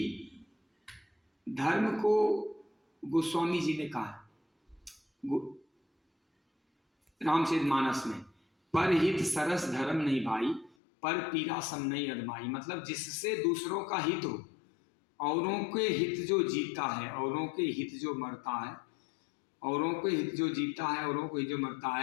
धर्म को गोस्वामी जी ने कहा रामचरितमानस में, पर हित सरस धर्म नहीं भाई, पर पीरा सम नहीं अदमाई। मतलब जिससे दूसरों का हित हो, औरों के हित जो जीता है, औरों के हित जो मरता है, औरों के हित जो जीता है, औरों को हित जो मरता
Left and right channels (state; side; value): drops out; right; at 10.8 s